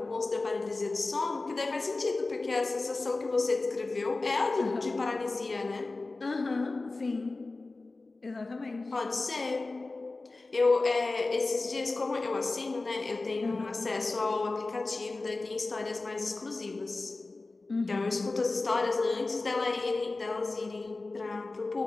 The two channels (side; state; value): right; quieter; 3.4 dB